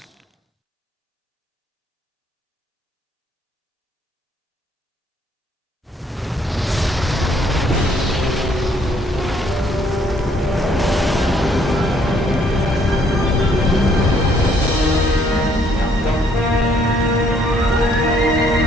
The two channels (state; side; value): normal; both; correlation 0.66